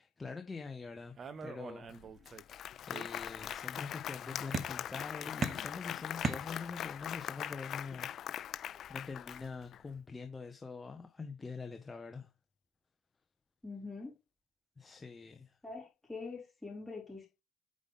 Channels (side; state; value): right; quieter; 3.4 dB